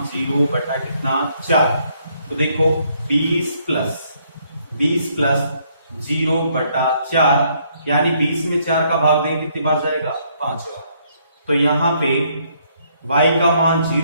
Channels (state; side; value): inverted; both; correlation -0.69